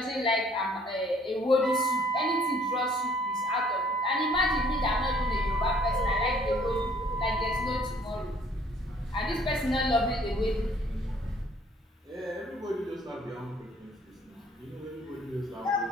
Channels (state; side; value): normal; both; correlation 0.59